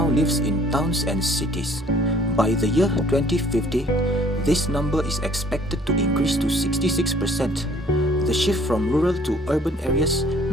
lives in towns and cities. By the year 2050, this number is expected to increase to 66%. The shift from rural to urban areas,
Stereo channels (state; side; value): normal; both; correlation 0.57